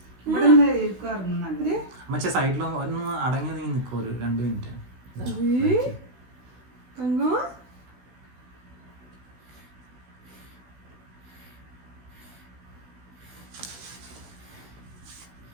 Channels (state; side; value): late; left; 16 ms